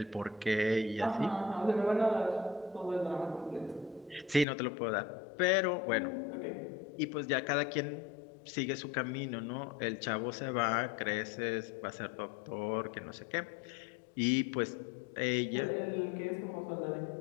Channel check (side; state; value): right; drops out; at 4.5 s